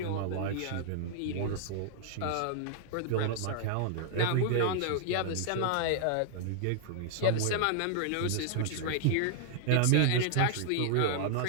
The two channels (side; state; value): both; different; correlation -0.01